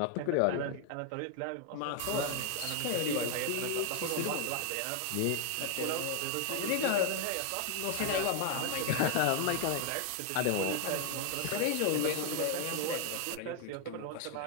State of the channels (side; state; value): both; different; correlation 0.00